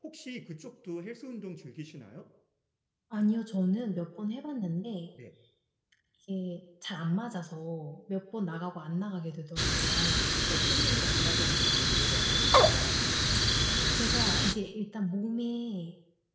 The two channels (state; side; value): identical; both; correlation 1.00